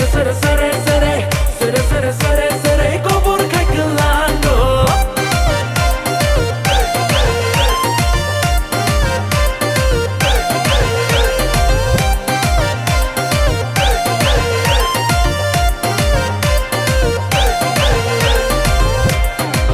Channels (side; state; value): both; identical; correlation 1.00